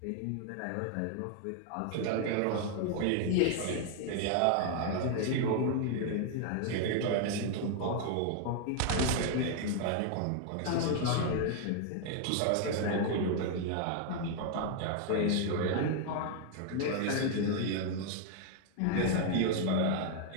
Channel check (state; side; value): different; both; correlation 0.00